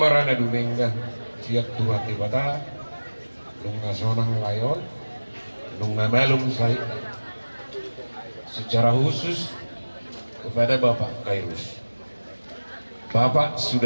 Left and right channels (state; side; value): inverted; both; correlation -1.00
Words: dumenga siap tuhan tibata nung nasonang layon, nung namalum saya secara khusus kepada Bapak Khairus. Bapak